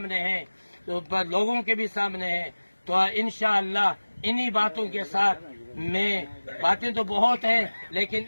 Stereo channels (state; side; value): inverted; both; correlation -1.00